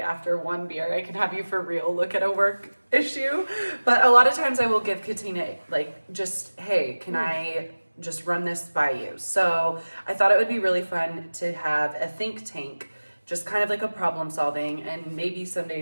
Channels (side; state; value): both; inverted; correlation -1.00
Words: one beer, I can have you for real look at a work issue. But a lot of times I will give Katina, like, just, hey, can I just run this by you? So I thought it would be really fun to have a think tank, just kind of like a problem solving. And maybe some